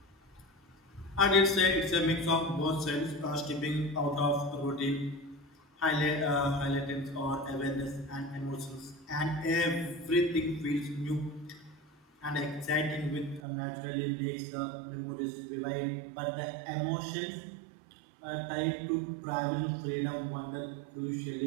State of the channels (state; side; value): drops out; left; at 13.4 s